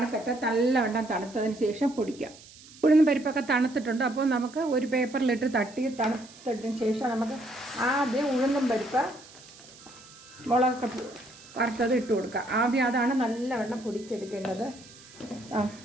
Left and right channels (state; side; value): noise; right; hiss, 21 dB below the sound